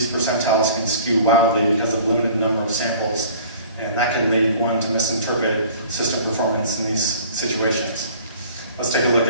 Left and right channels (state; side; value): inverted; both; correlation -0.48